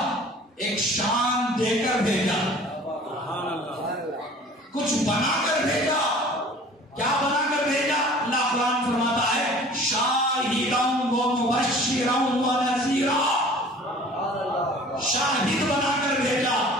ایک شان دے کر بھیجا، کچھ بنا کر بھیجا. کیا بنا کر بھیجا؟ اللہ قرآن فرماتا ہے شاہداً و مبشراً و نذیرا. شاہد بنا کر بھیجا.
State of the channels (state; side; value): normal; both; correlation 0.47